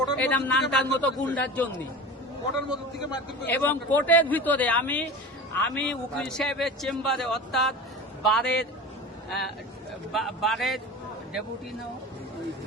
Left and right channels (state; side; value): normal; both; correlation 0.32